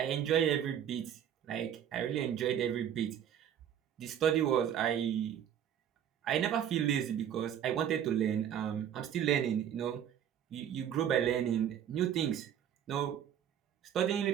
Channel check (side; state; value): left; quieter; 9.6 dB